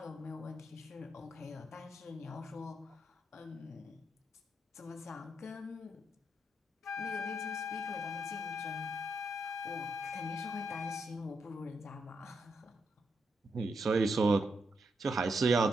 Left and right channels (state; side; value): normal; both; correlation 0.81